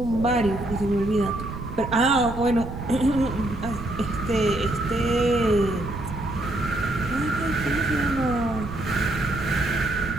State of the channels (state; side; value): noise; right; rumble, 9 dB below the sound